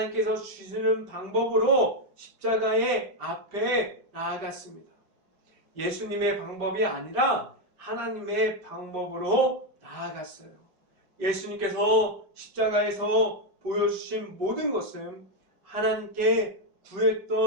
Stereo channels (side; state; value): left; late; 5.1 ms